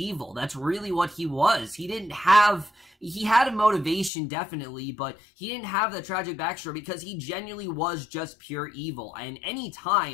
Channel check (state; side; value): drops out; right; at 4.1 s